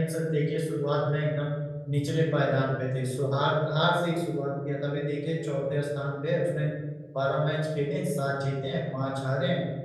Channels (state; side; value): identical; both; correlation 1.00